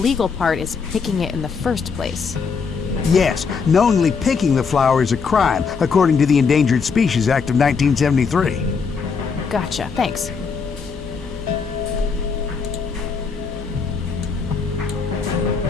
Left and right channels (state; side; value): quieter; right; 5.4 dB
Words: part is picking it in the first place. Yes, knowingly picking the flower is a crime, according to the Endangered Species Act of 1973. Gotcha, thanks.